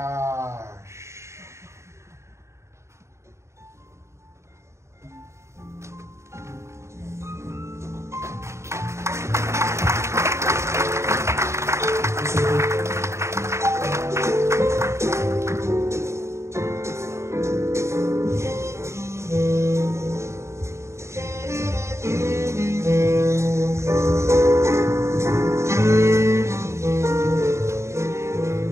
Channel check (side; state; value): left; late; 0.14 ms